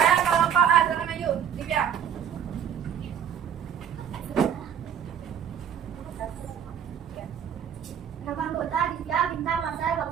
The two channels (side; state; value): left; quieter; 8.5 dB